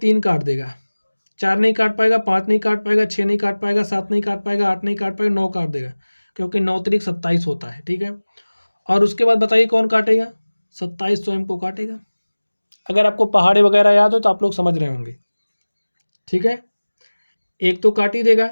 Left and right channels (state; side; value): inverted; both; correlation -1.00